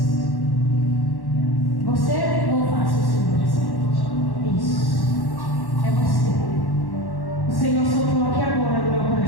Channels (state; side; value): late; right; 1.1 ms